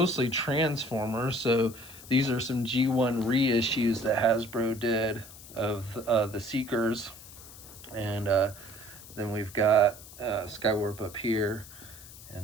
Transformers, so these are some G1 reissues that Hasbro did of the Seekers. And then we've got Skywarp up here,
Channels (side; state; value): left; noise; hiss, 17 dB below the sound